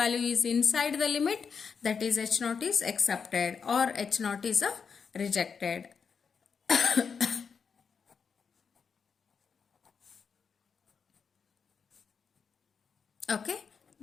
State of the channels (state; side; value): quieter; right; 6.0 dB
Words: is inside the limit, that is H naught is accepted or H naught is rejected. Okay,